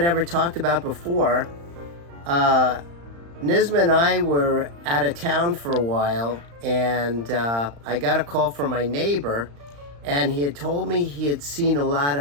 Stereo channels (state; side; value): late; left; 35 ms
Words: ever talked about before. Nizma and I were out of town for a while, and I got a call from my neighbor, and he had told me he had seen a lot